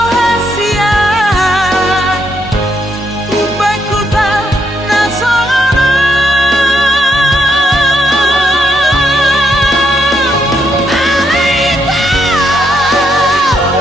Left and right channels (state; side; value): normal; both; correlation 0.77